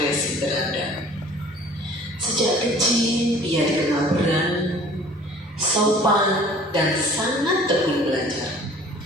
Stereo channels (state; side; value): normal; both; correlation 0.49